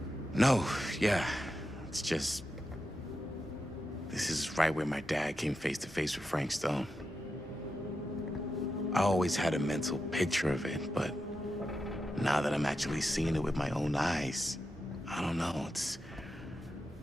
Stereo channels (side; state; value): both; normal; correlation 0.88